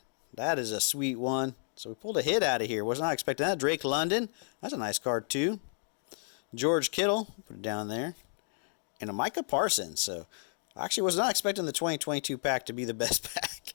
That is a sweet one. So we pulled a hit out of here. Was not expecting that. Drake London. That's a nice card too. George Kittle. Put it down there. And a Micah Parsons. So I actually was not expecting the 2022 pack to be the best pack.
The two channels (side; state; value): right; silent; digital silence